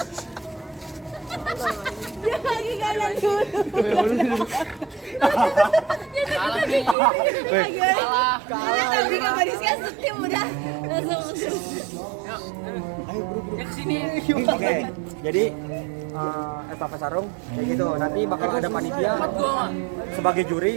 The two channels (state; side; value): drops out; left; at 7.0 s